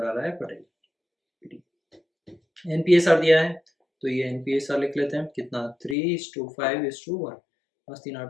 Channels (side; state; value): right; drops out; at 6.0 s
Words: आ रहा है पटेल। एनपीएसआर दिया है तो ये एनपीएसआर लिख लेते हैं, कितना 3:5:1, मस्ती